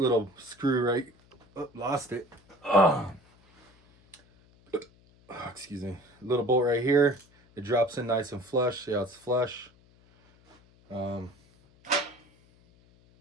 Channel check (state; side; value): noise; left; hum, 30 dB below the sound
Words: screw right, oh, lost it. Oh, excuse me. Little bolt right here. It drops in nice and flush. See how it's flush.